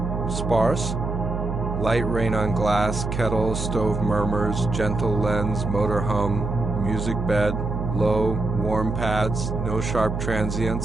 Sparse. Light rain on glass, kettle, stove murmurs, gentle lens, motor hum, music bed, low, warm pads, no sharp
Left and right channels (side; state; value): right; noise; hum, 3 dB below the sound